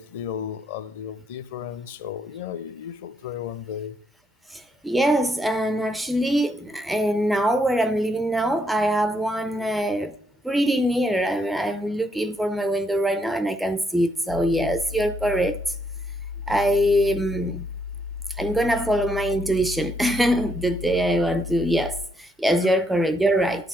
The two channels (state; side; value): normal; both; correlation 0.75